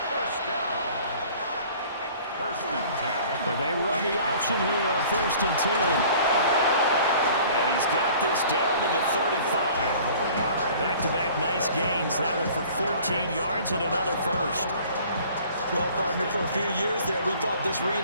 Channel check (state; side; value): inverted; both; correlation -0.49